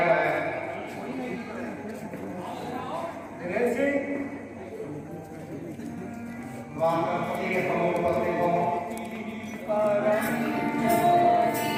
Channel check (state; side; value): identical; both; correlation 1.00